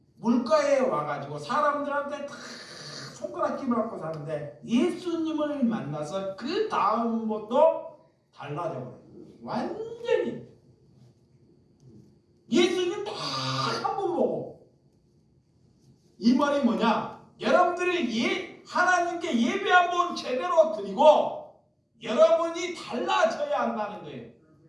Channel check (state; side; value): identical; both; correlation 1.00